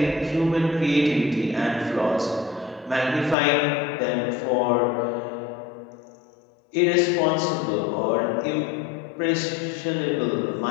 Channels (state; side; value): drops out; right; at 3.4 s